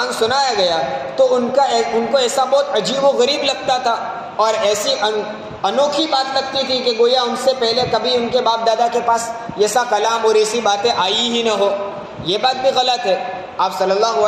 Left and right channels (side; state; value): both; identical; correlation 1.00